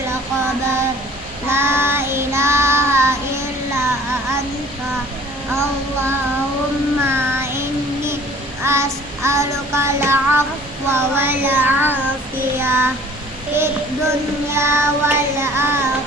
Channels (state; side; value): normal; both; correlation 0.51